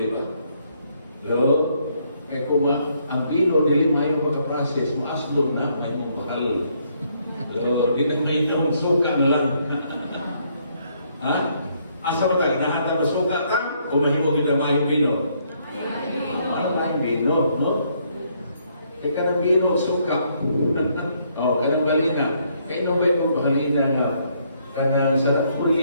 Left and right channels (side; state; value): both; inverted; correlation -0.71